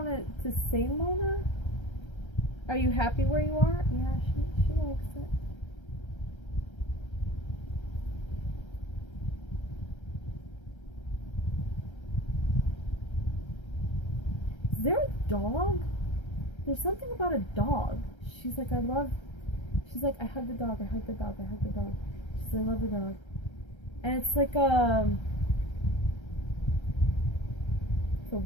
to say, Mona? Are you happy where you are? Yeah, she likes it. Is there a dog? There's something about a dog. She's like, I hug the dog, I hug the dog, I hug the dog. She says, I love the dog. And it's like it's a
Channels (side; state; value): right; late; 1.3 ms